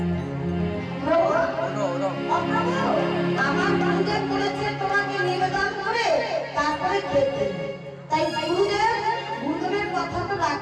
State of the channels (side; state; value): both; identical; correlation 1.00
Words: আমার গুরুদেব বলেছে তোমাকে নিবেদন করে তারপরে খেতে। তাই গুরুদেবের কথা তো